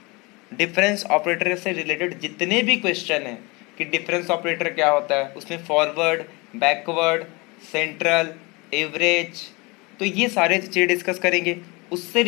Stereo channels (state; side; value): quieter; right; 26.2 dB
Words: डिफरेंस ऑपरेटर से रिलेटेड जितने भी क्वेश्चन हैं कि डिफरेंस ऑपरेटर क्या होता है, उसमें फॉरवर्ड, बैकवर्ड, सेंट्रल, एवरेज, तो ये सारे चीज़ें डिस्कस करेंगे। उससे